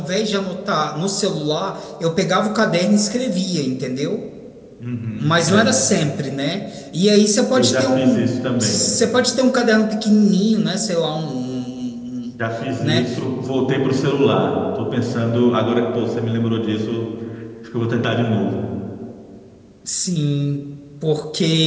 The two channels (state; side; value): identical; both; correlation 1.00